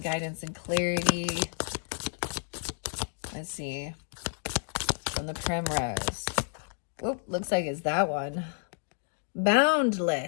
guidance and clarity. Let's see. From the Primrose. Oop, looks like it's that one.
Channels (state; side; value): silent; right; 57 dB below the other